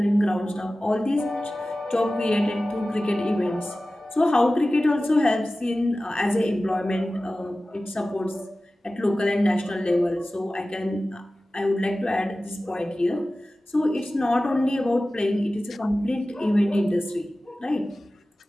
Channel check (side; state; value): both; normal; correlation 0.96